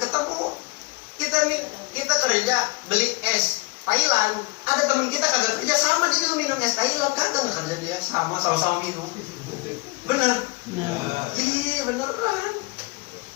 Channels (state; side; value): quieter; right; 25.8 dB